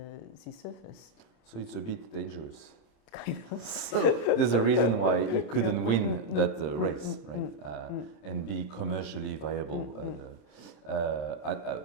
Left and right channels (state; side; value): late; right; 27 ms